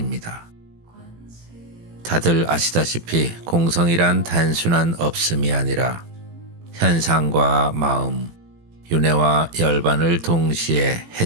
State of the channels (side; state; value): left; late; 18 ms